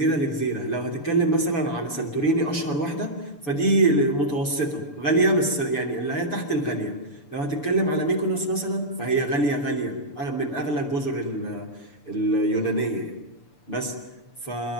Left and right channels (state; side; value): late; right; 6.9 ms